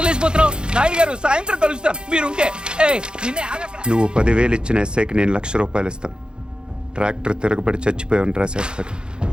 లేచిపోతున్నావు? నాయుడు గారు, సాయంత్రం కలుస్తాను మీరుంటే. నువ్వు 10,000 ఇచ్చిన ఎస్ఐకి నేను ₹1,00,000 ఇస్తాను. ట్రాక్టర్ తిరగబడి చచ్చిపోయామని రాసేస్తాడు.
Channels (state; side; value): late; left; 0.050 ms